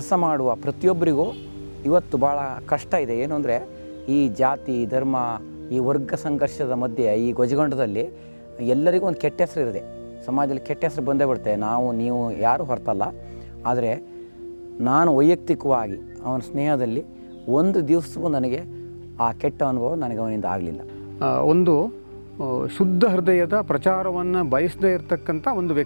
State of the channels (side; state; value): both; inverted; correlation -1.00